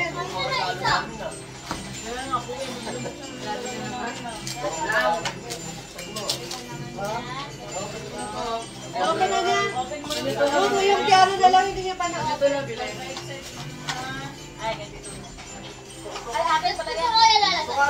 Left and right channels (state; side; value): identical; both; correlation 1.00